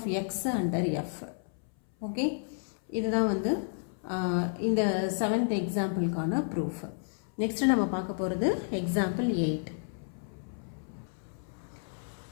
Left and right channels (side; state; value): right; silent; 57 dB below the other